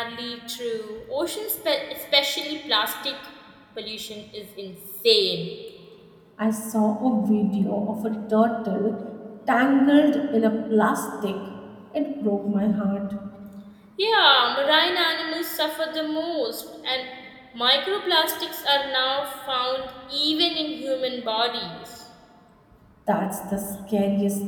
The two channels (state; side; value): identical; both; correlation 1.00